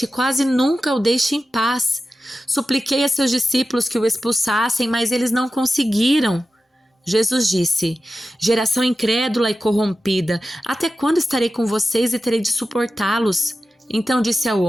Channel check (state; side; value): normal; both; correlation 0.93